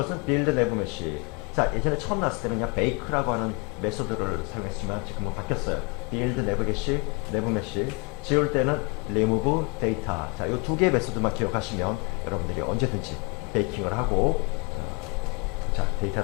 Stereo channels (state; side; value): quieter; right; 29.5 dB